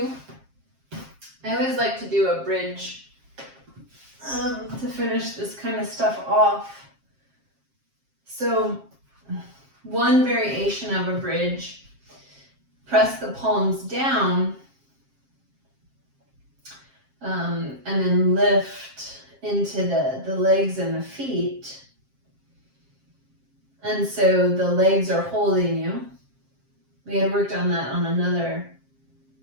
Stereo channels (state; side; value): late; left; 7.5 ms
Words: I always like to do a bridge to finish this kind of stuff off. So one variation of a bridge, press the palms down and then lift into the legs and the feet. And so the legs are holding you. We had worked on that on another